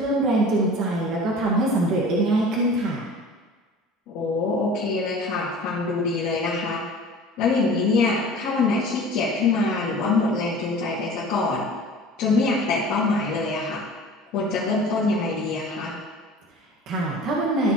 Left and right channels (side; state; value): both; normal; correlation 0.42